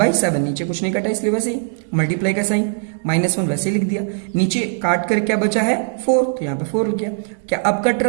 नीचे कुछ नहीं कटा इसलिए वैसे ही मल्टीप्लाई का साइन -1 वैसे लिख दिया। नीचे काट कर क्या बचा है? 4, तो यहाँ पे 4 लिख गया। क्या अब कट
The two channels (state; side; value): silent; left; digital silence